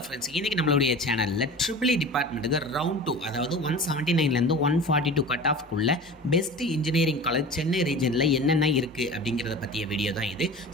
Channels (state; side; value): normal; both; correlation 0.36